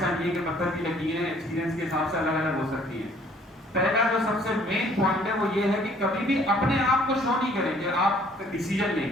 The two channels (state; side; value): normal; both; correlation 0.59